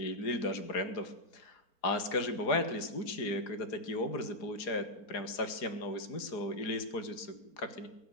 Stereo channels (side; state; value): right; late; 4.3 ms